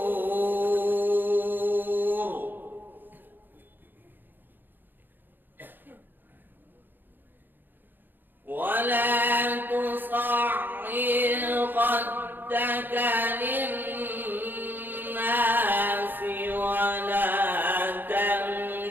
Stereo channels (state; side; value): late; left; 0.093 ms